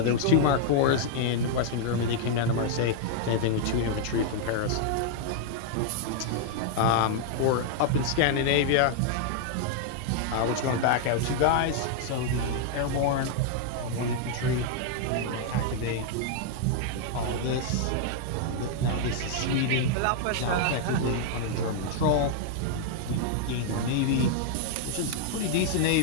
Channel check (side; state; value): both; different; correlation -0.01